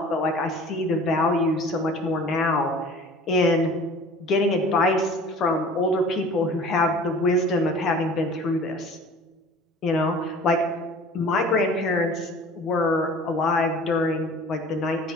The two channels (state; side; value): normal; both; correlation 0.45